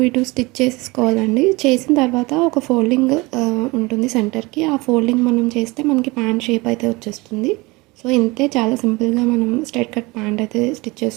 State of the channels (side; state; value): left; quieter; 23.5 dB